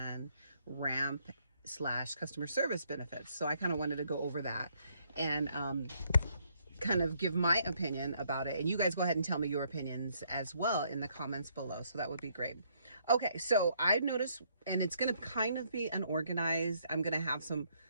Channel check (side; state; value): both; inverted; correlation -0.70